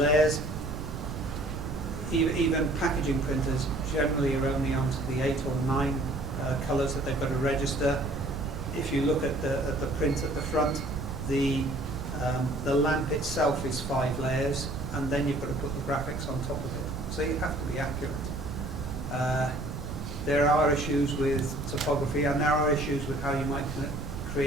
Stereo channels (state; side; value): noise; right; rumble, 8 dB below the sound